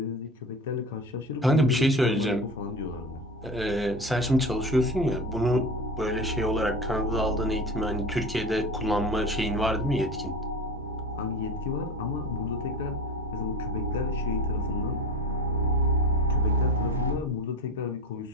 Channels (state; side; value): normal; both; correlation 0.32